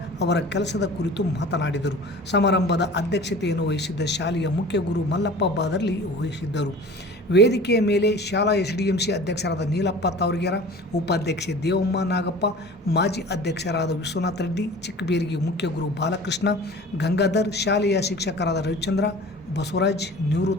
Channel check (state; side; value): normal; both; correlation 0.41